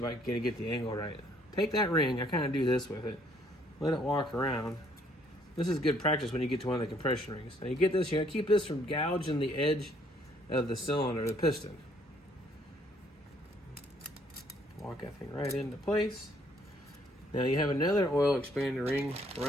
I can get the angle right. Take that ring, I kind of do this with it. Let it walk around. This is good practice when you get to one of the compression rings. Now you get this, you gotta keep this from gouging the edge of the cylinder, the piston. Walk that thing right into place. Now you have another oil expander ring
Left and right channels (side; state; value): both; normal; correlation 0.65